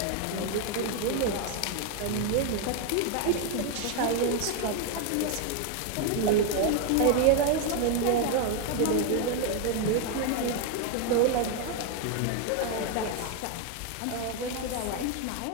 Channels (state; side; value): different; both; correlation 0.01